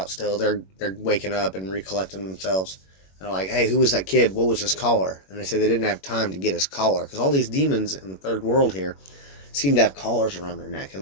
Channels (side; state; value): right; late; 21 ms